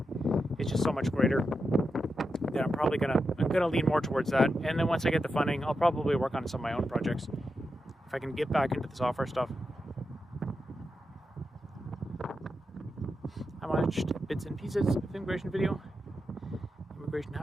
just so much greater that I'm probably gonna lean more towards that. And then once I get the funding, I'll probably work on some of my own projects if I can get back into the software stuff. I watched bits and pieces of the immigration video. Immigration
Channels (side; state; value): both; normal; correlation 0.88